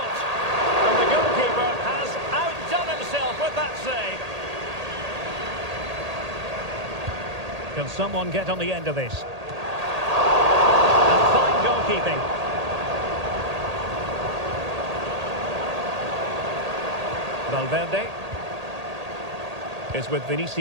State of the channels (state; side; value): late; left; 1.8 ms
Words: And the goalkeeper has outdone himself with that save. Can someone get on the end of this? And fine goalkeeping. Valverde is with